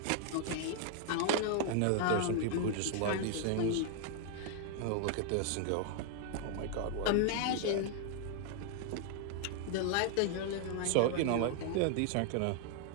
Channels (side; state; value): both; different; correlation 0.00